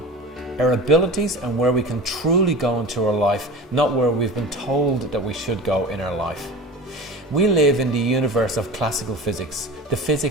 our abilities and where we can truly go into our life, not where we've been told that we should go in our life. We live in the universe of classical physics, the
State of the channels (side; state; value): both; normal; correlation 0.33